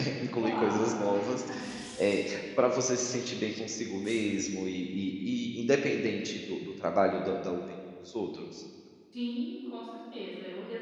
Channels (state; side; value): identical; both; correlation 1.00